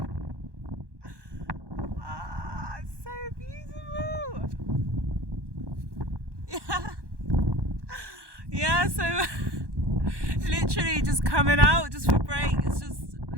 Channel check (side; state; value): left; late; 1.2 ms